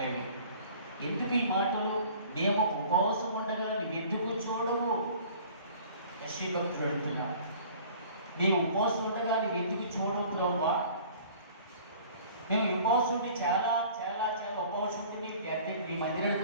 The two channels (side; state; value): both; inverted; correlation -0.48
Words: ఎందుకు ఈ మాటలు? మేము ఉపవాసం ఉండగా నువ్వెందుకు చూడవు? యెషయా భక్తుడు అడుగుతున్నాడు. మేము ఉపవాసం ఉండగా నువ్వెందుకు చూడవు ప్రభువా? మేము ఉపవాసం ఉండి చాలా చాలా చాలా ఉపవాసం ఉండి నీ